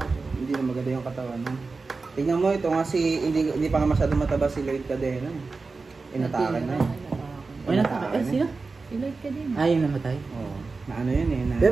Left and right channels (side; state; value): left; quieter; 4.1 dB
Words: Hindi na maganda yung katawan mo. Tingnan mo, ito nga hindi pa nga masyado mataba si Lloyd Cadena. Inatakan na yun. Ay, nataka. Eh, sino? Si Lloyd ka din. Ah, yung namatay. Oo. Na ano yun eh. Na